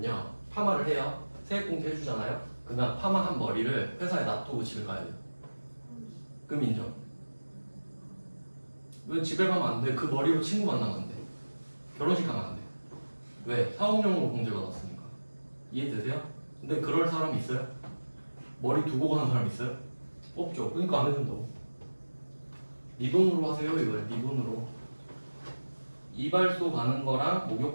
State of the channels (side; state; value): both; inverted; correlation -1.00